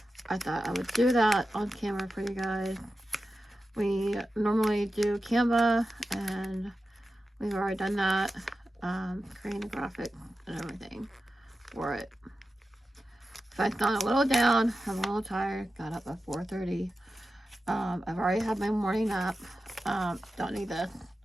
I thought I would do that on camera for you guys. We normally do Canva, and we've already done that. Creating the graphics and everything for it. If I sound a little down, I'm a little tired, got up at 4:30. I've already had my morning nap. Don't need this.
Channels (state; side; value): normal; both; correlation 0.92